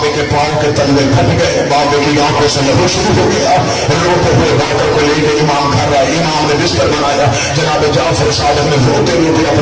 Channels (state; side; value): identical; both; correlation 1.00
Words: کے پاؤں کے تلوے پھٹ گئے, بابے کی آنکھوں سے لہو شروع ہو گیا. روتے ہوئے باقر کو لے کے امام گھر آئے, امام نے بستر بنایا. جناب جعفر صادق نے روتے روتے